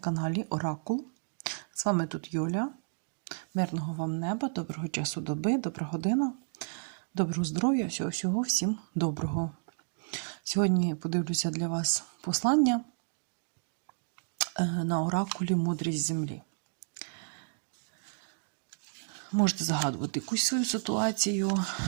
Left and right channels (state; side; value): silent; left; digital silence